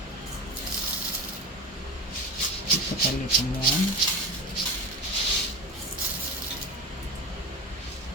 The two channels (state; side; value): normal; both; correlation 0.26